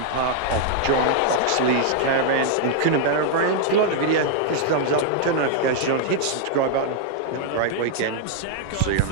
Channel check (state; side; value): different; both; correlation -0.01